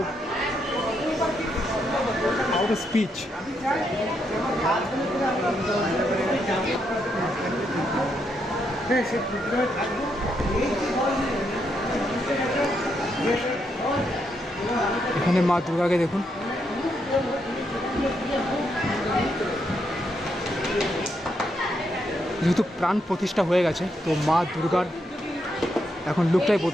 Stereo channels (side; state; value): both; normal; correlation 0.79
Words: out of speech. এখানে মা দুর্গাকে দেখুন, যেহেতু প্রাণ প্রতিষ্ঠা হয়ে গেছে তো মা দুর্গার এখন লুকটাই